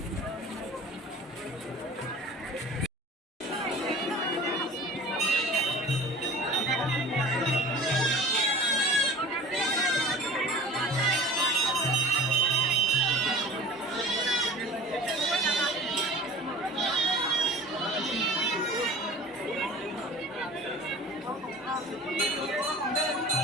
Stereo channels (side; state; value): both; normal; correlation 0.41